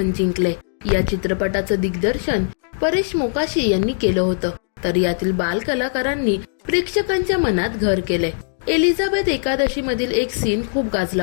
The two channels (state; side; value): silent; right; digital silence